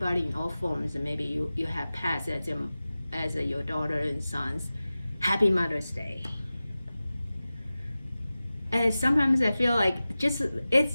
in all forms, and maybe you have pets as your daughter and sons. Happy Mother's Day. And sometimes I feel like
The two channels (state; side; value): inverted; both; correlation -0.96